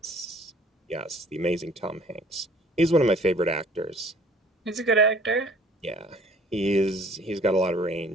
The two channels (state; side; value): normal; both; correlation 0.54